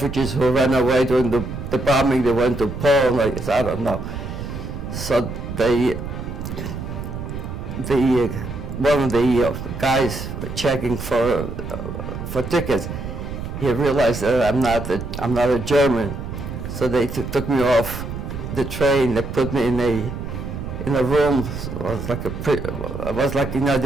who ran away during the the bombing, they went to Poland, I guess, I don't know. So one of the guys checking for tickets, he realized that I'm not a German, so they took me off the train. They put me in a room. It was like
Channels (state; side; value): noise; right; rumble, 7 dB below the sound